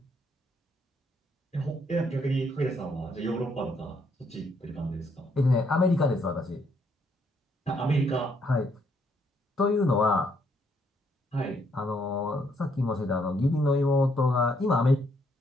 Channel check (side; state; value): both; normal; correlation 0.72